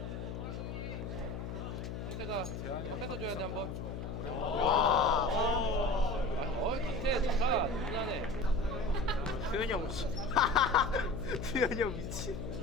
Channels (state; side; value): noise; left; hum, 6 dB below the sound